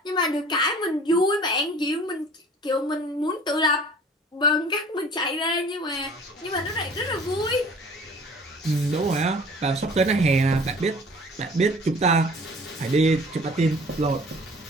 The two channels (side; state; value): both; normal; correlation 0.48